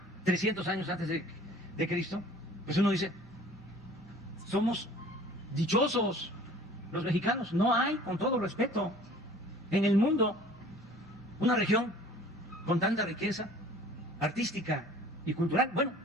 300 años antes de Cristo, pues uno dice, somos dichosos los mexicanos. No hay, con todo respeto, en el mundo una región con tanta riqueza artística y cultural. Bueno,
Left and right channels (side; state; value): both; normal; correlation 0.49